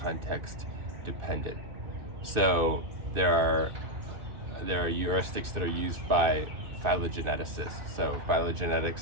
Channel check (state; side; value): late; left; 2.6 ms